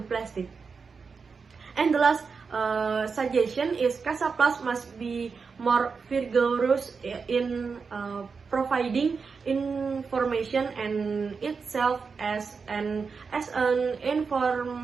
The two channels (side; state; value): left; quieter; 5.2 dB